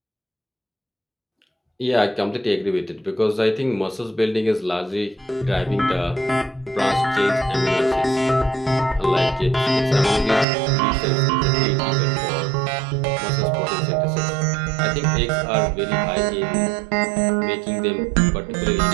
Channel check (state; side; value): drops out; left; at 10.5 s